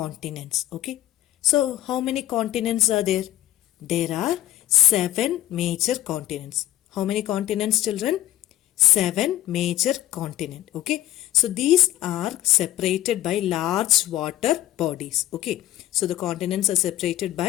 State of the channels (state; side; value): quieter; right; 13.7 dB